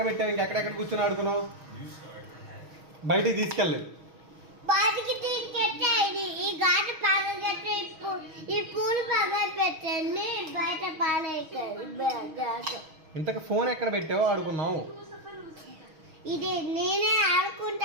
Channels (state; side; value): late; left; 6.4 ms